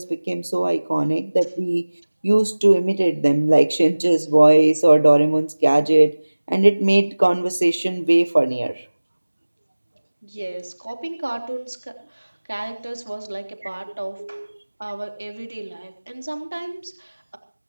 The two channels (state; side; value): inverted; both; correlation -1.00